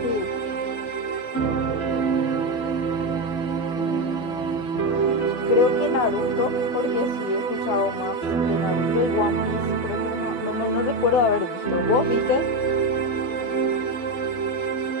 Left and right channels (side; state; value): right; late; 12 ms